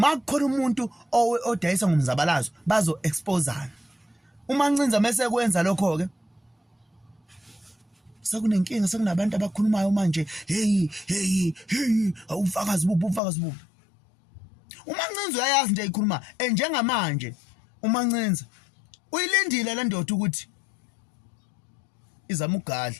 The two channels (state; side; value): drops out; right; at 13.2 s